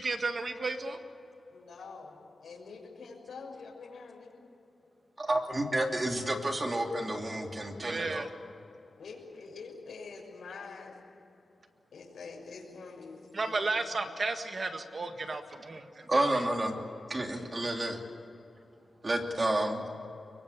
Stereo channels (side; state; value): both; normal; correlation 0.94